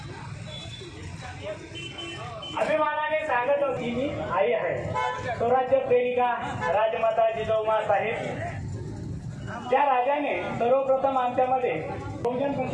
अभिमानाने सांगत होती मी आई आहे. स्वराज्य प्रेरिका राजमाता जिजाऊमा साहेब त्या राजाने सर्वप्रथम आमच्यामध्ये बहुजन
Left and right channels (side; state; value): both; identical; correlation 1.00